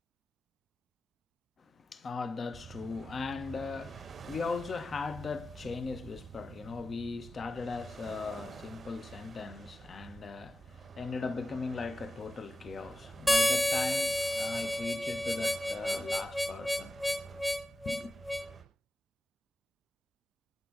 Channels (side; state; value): both; normal; correlation 0.94